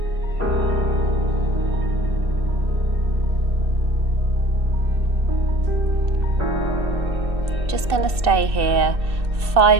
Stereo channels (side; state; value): left; late; 2.6 ms